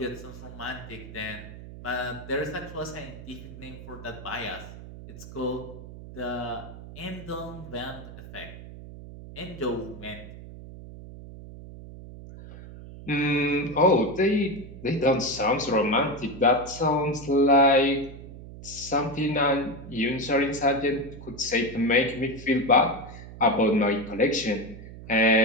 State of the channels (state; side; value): noise; right; hum, 14 dB below the sound